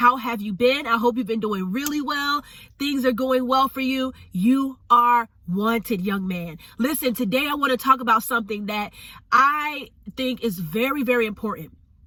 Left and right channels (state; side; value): identical; both; correlation 1.00